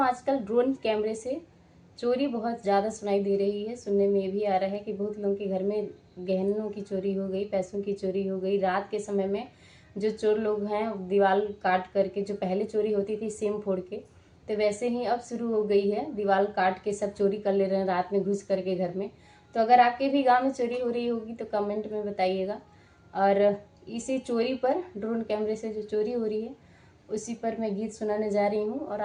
आजकल ड्रोन कैमरे से चोरी बहुत ज़्यादा सुनाई दे रही है। सुनने में भी आ रहा है कि बहुत लोगों के घर में गहनों की चोरी हो गई, पैसों की चोरी हो गई। रात के समय में जो चोर लोग हैं दीवार काट करके, जो पहले चोरी होती थी सिम फोड़ के, तो वैसे ही अब शुरू हो गई है, दीवार काट के सब चोरी कर ले रहे हैं रात में घुस करके घर में। तो अगर आपके भी गांव में चोरी हो रही होगी तो कमेंट में बताइएगा। और इसी चोरी पर, ड्रोन कैमरे से जो चोरी हो रही है उसी पर मैं गीत सुनाने जा रही हूँ और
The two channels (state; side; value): identical; both; correlation 1.00